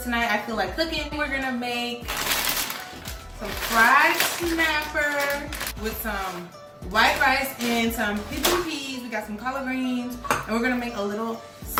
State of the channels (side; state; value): both; identical; correlation 1.00